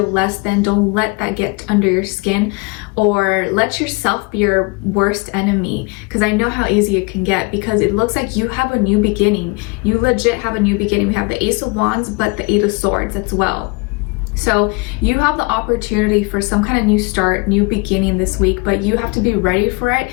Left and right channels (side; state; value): right; quieter; 29.0 dB